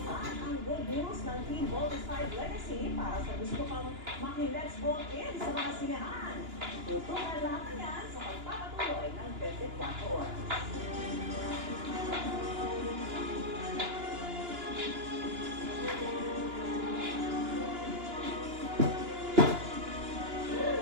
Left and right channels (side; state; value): left; late; 2.9 ms